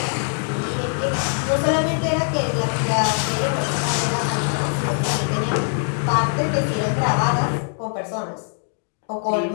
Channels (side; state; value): right; silent; digital silence